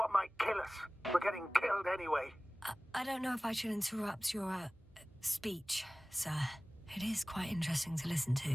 might kill us? We're getting killed anyway. I don't know if I should interrupt your speech, sir. It is quite interesting to listen to.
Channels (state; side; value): normal; both; correlation 0.98